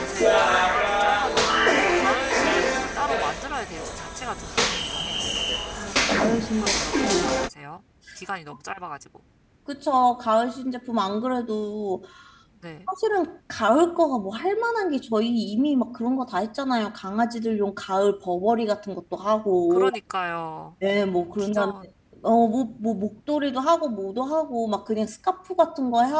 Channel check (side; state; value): both; identical; correlation 1.00